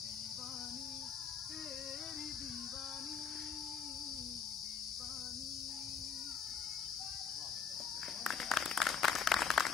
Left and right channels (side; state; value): right; quieter; 6.6 dB